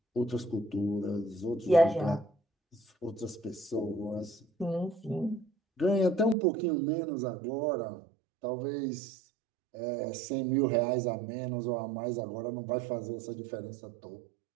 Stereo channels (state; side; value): drops out; left; at 6.4 s